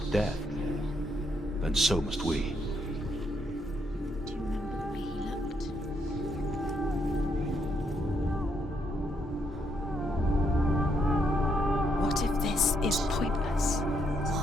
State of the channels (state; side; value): normal; both; correlation 0.75